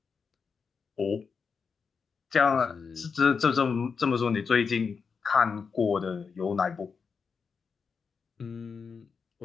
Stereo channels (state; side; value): quieter; right; 5.6 dB